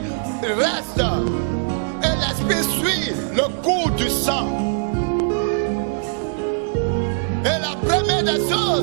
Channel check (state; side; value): silent; left; 65 dB below the other